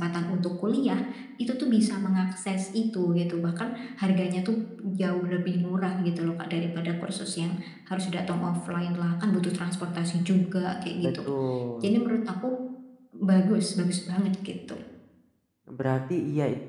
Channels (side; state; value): both; identical; correlation 1.00